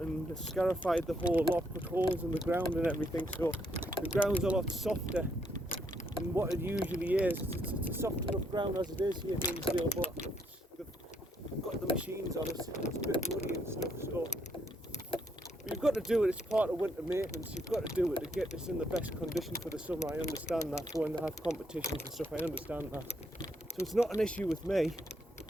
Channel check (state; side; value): normal; both; correlation 0.74